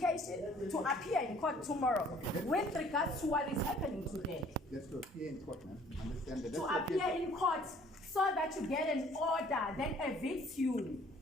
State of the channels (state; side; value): normal; both; correlation 0.56